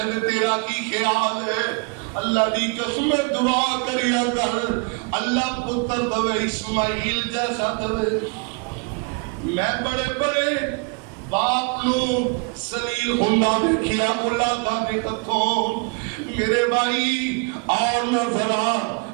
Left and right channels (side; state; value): left; quieter; 32.3 dB